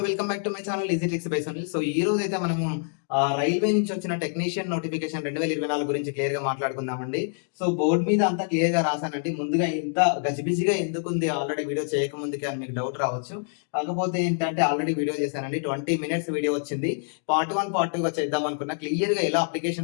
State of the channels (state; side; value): silent; right; 61 dB below the other